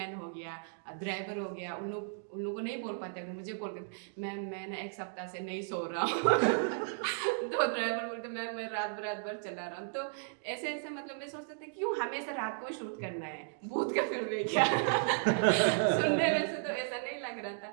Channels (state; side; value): silent; left; digital silence